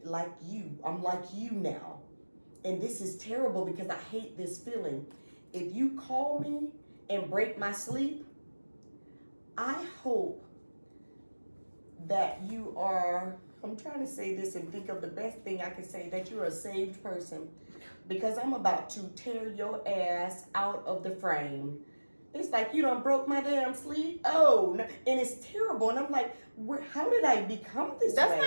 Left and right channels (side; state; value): both; inverted; correlation -1.00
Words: like you, I'm like you now. And this is terrible because I hate this feeling. If you call me and break my sleep, I hope that you are, I'm trying to say this and think of the best thing I can say, that you're a saved person, because I'm about to tear your ass out of the frame. It's like you done broke my damn sleep. Oh, no. And it's terrible. And I'm like, how did I become this way? That's